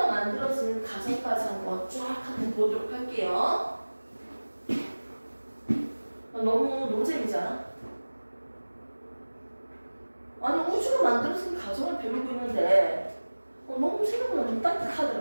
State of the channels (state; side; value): inverted; both; correlation -1.00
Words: 만들어지는 과정까지 한번 쫙 한번 보도록 할게요. 너무 노잼이지 않아? 아니 우주가 만들어진 과정을 배우고 있는데 너무 생각보다 좀